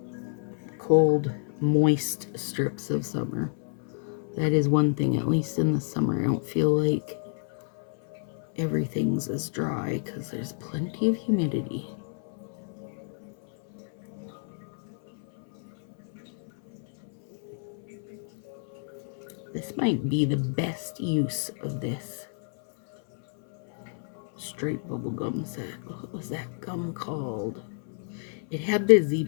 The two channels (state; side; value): silent; right; 59 dB below the other